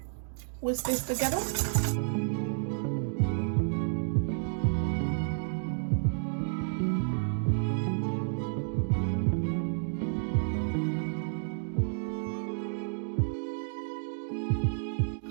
Whisk this together.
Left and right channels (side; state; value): left; silent; digital silence